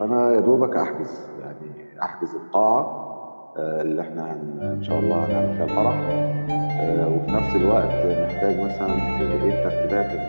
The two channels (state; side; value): inverted; both; correlation -1.00